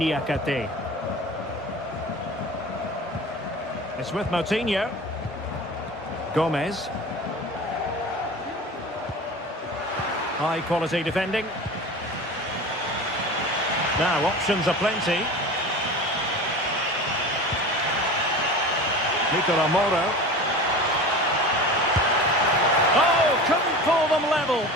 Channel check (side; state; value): both; normal; correlation 0.34